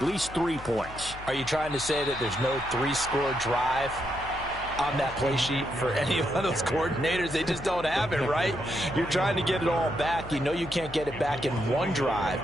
least 3 points. Are you trying to say that there's no 3-score drive on that play sheet for any of those coordinators? They just don't have it, right? You're trying to get it all back. You know you can't get it back in one drive,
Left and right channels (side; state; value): left; noise; hum, 15 dB below the sound